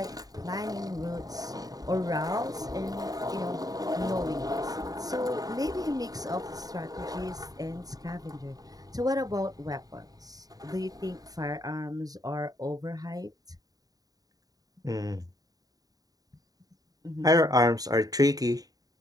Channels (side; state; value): left; late; 0.18 ms